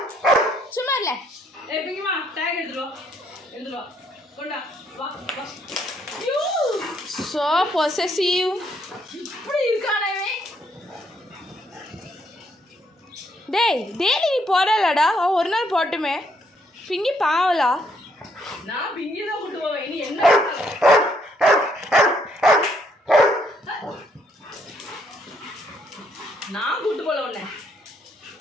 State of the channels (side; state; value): both; normal; correlation 0.71